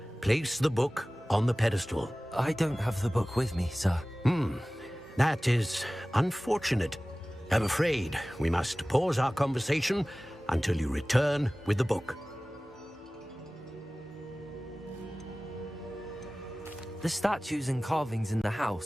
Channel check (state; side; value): normal; both; correlation 0.98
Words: Place the book on the pedestal. I don't have the book with me, sir. That is unfortunate. I'm afraid we must pause our conversation until you return with the book. The statues and carvings in the